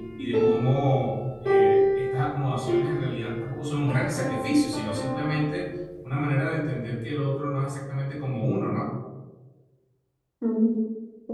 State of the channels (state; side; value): identical; both; correlation 1.00